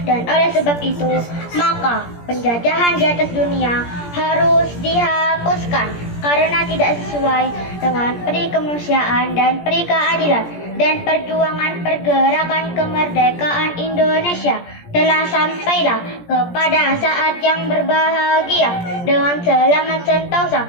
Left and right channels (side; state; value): right; late; 17 ms